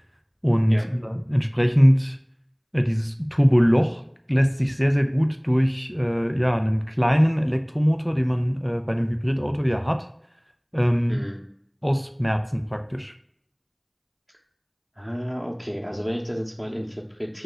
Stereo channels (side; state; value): both; identical; correlation 1.00